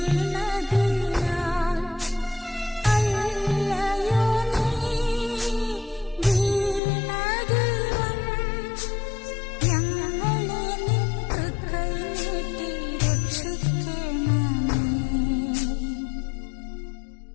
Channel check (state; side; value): drops out; right; at 6.8 s